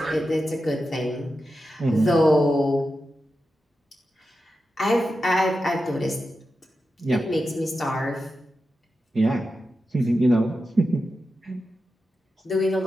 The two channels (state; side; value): normal; both; correlation 0.90